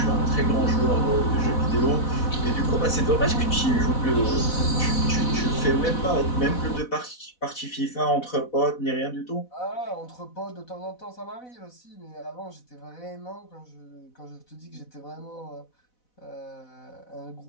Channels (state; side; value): late; right; 4.1 ms